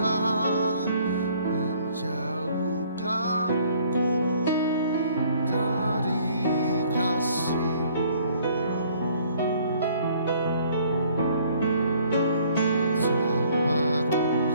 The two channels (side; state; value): both; inverted; correlation -0.59